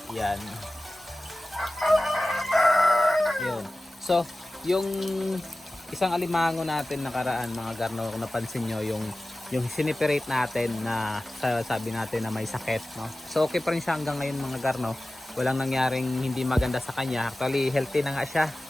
yan. Yun. So, yung isang alimango natin nakaraan mga garno, kung napansin nyo yung siniperate natin na sabi natin na may sakit, no? So okay pa rin siya hanggang ngayon mga garno. Walang nangyaring hindi maganda sa kanya. Actually healthy na nga siya.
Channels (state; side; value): normal; both; correlation 0.96